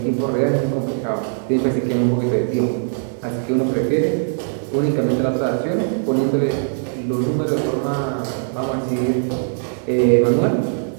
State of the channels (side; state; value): left; silent; digital silence